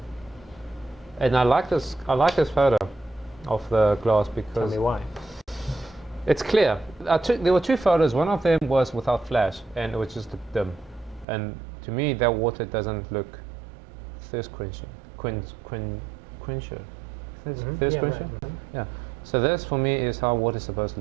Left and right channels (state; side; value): drops out; left; at 11.2 s